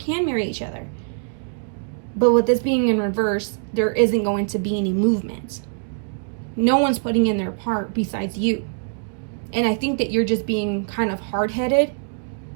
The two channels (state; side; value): silent; left; digital silence